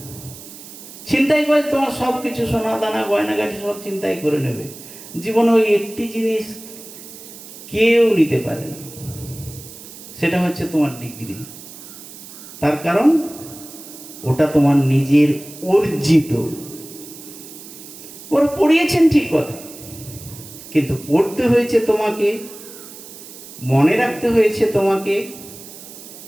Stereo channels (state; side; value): noise; right; hiss, 16 dB below the sound